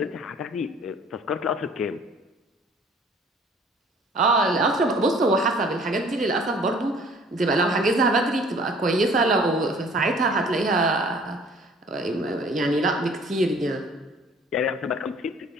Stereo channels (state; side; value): normal; both; correlation 0.53